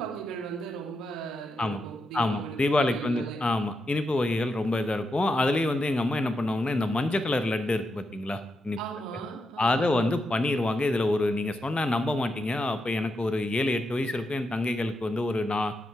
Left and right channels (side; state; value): both; normal; correlation 0.85